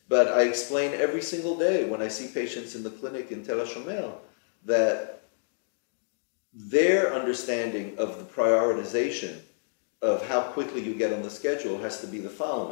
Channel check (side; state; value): right; silent; digital silence